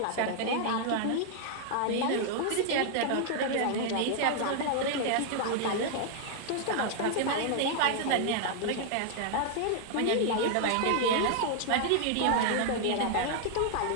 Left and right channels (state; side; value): different; both; correlation 0.00